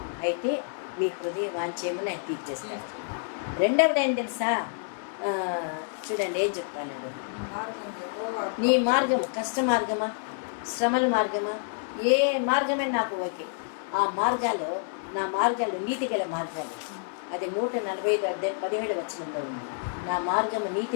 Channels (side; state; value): right; silent; 57 dB below the other